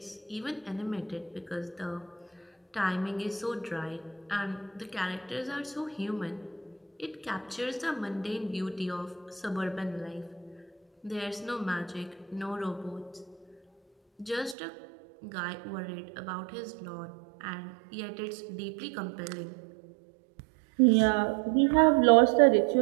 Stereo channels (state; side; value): drops out; left; at 14.6 s